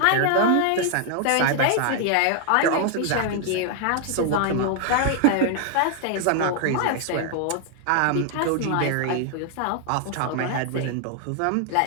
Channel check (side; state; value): both; different; correlation 0.00